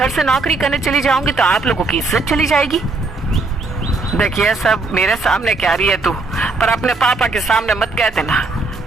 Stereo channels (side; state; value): left; quieter; 3.5 dB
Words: से नौकरी करने चली जाऊंगी तो आप लोगों की इज्जत चली जाएगी। देखिए सब मेरे सामने कह रही है तू, पर अपने पापा के सामने मत कह देना,